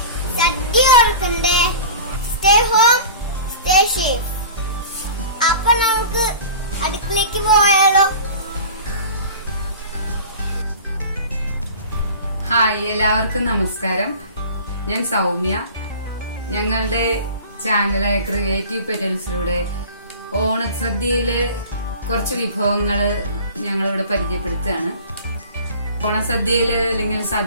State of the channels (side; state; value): both; inverted; correlation -0.39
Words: സദ്യ ഓർക്കണ്ടേ. Stay home, stay safe. അപ്പൊ നമുക്ക് അടുക്കളയ്ക്ക് പോയാലോ? ഹായ്, എല്ലാവർക്കും നമസ്കാരം. ഞാൻ സൗമ്യ. ഞങ്ങളുടെ ചാനലായ ക്രിയേറ്റീവ് പെറ്റൽസിലൂടെ ഓണസദ്യയിലെ കുറച്ച് വിഭവങ്ങള് ഞങ്ങളിവിടെ പരിചയപ്പെടുത്തുകയാണ്. ഓണസദ്യയില് അല്ലെങ്കിൽ